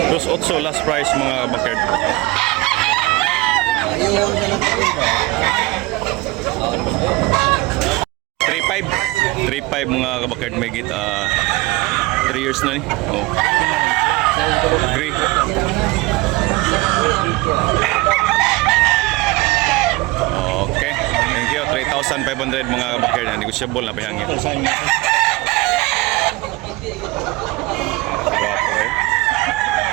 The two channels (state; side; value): quieter; left; 21.7 dB